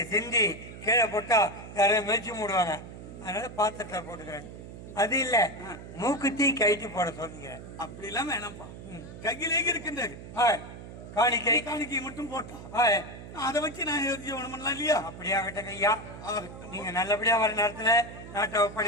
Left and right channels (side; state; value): right; noise; hum, 13 dB below the sound